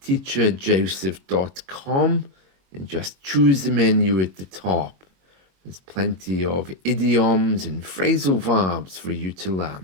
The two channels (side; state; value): left; late; 22 ms